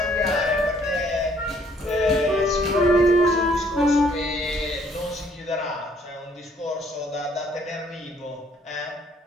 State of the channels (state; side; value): normal; both; correlation 0.63